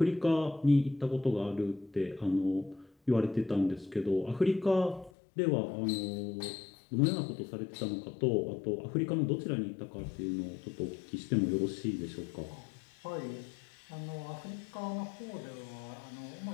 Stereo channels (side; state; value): right; drops out; at 5.1 s